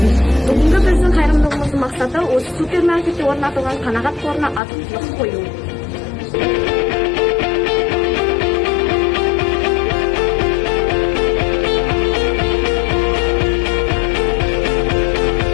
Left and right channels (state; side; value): drops out; right; at 4.6 s